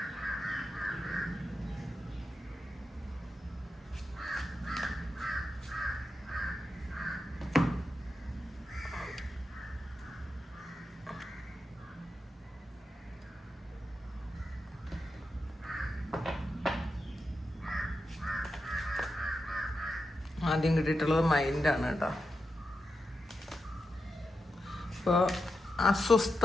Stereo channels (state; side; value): normal; both; correlation 0.88